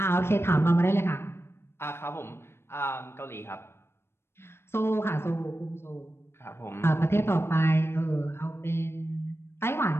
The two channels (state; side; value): late; right; 0.12 ms